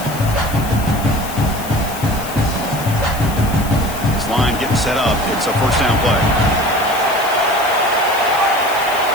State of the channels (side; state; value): left; noise; hiss, 13 dB below the sound